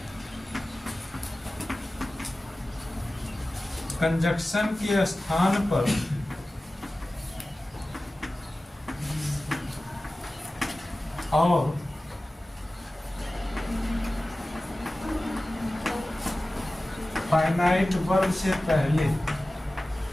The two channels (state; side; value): normal; both; correlation 0.96